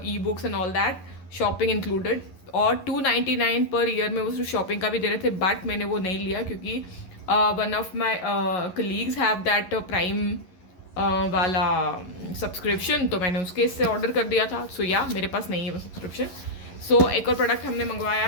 e books and all that, shopping included. और 299 पर ईयर में वो सिर्फ शॉपिंग का भी दे रहे थे, बट मैंने वो नहीं लिया क्योंकि one of my colleagues have that prime वाला सब्सक्रिप्शन, तो मैंने उसके इससे ऑर्डर कर दिया था। सो या मेरे पास नहीं है वो सब्सक्रिप्शन। सो एक और प्रोडक्ट हमने मंगवाया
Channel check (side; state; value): right; late; 11 ms